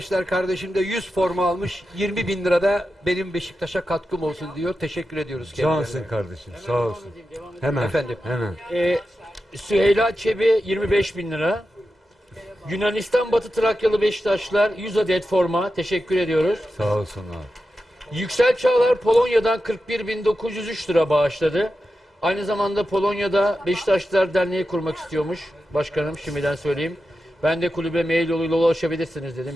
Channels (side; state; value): both; normal; correlation 0.91